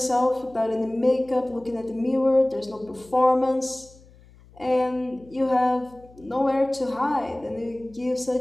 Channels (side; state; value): left; noise; hum, 25 dB below the sound